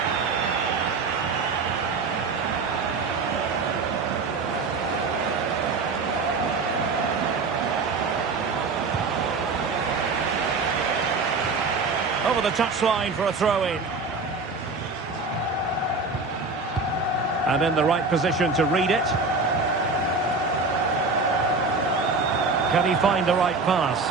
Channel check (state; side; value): quieter; left; 4.0 dB